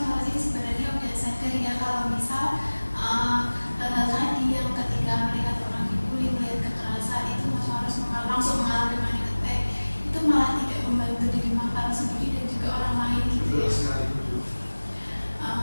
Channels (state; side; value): inverted; both; correlation -1.00